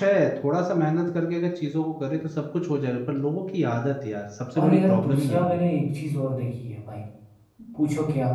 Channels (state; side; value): identical; both; correlation 1.00